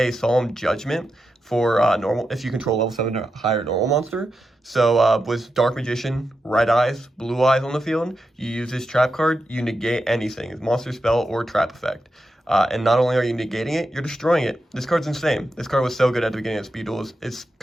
Solemn Judgment for normal, if you control level 7 or higher normal monster. So with Dark Magician, Red Eyes, Blue Eyes on the field, you use this trap card, you negate anything, monster spell or trap effect. And not only are you negating it, you're destroying it. This card's insane. This card was so good at the beginning of Speed Duels. It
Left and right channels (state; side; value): normal; both; correlation 0.88